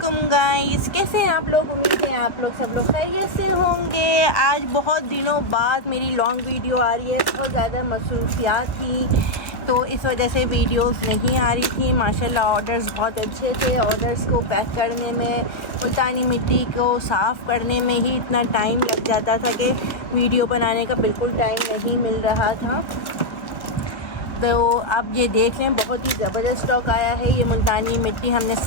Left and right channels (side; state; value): right; late; 1.3 ms